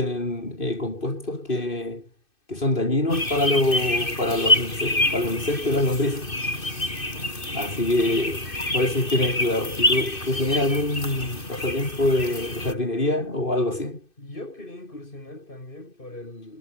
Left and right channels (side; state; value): right; late; 2.6 ms